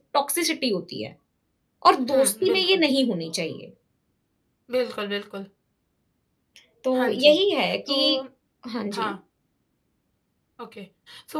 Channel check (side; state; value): both; identical; correlation 1.00